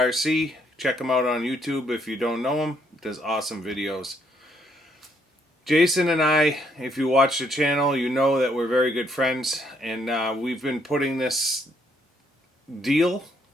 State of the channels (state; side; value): normal; both; correlation 0.70